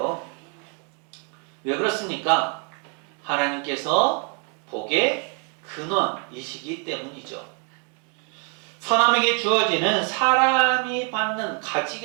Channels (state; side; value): quieter; left; 38.1 dB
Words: 왜 그렇습니까? 하나님께서 복의 근원이시기 때문이죠. 사람에게 주어지는 사람이 받는,